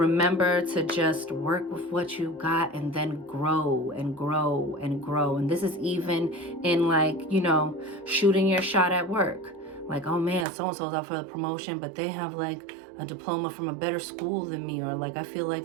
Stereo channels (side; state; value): left; drops out; at 10.5 s